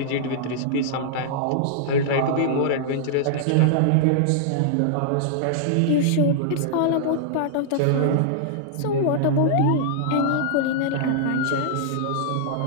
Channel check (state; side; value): different; both; correlation -0.01